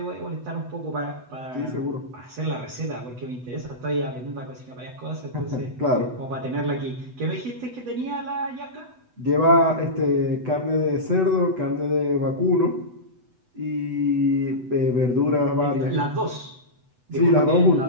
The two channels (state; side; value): late; left; 8.0 ms